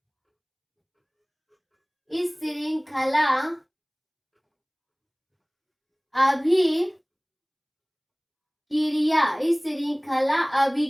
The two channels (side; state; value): both; identical; correlation 1.00